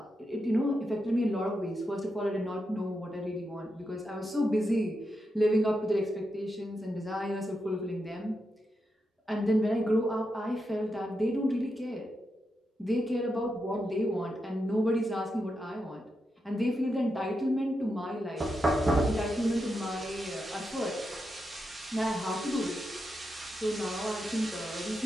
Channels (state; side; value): normal; both; correlation 0.86